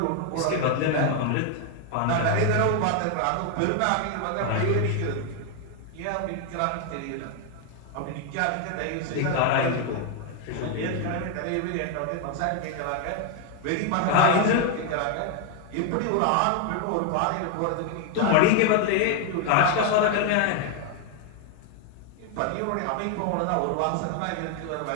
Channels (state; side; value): different; both; correlation 0.01